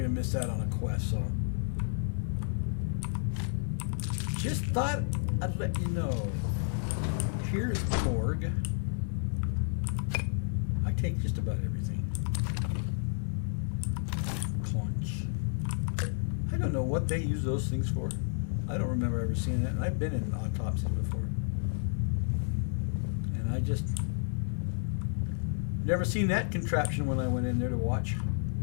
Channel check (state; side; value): silent; right; 57 dB below the other